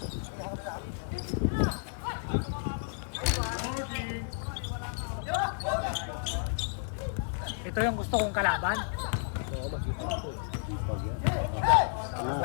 Ito yung gusto kong kalaban. Oo, mag-ipag to eh. Ipag yan.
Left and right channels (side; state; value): right; silent; digital silence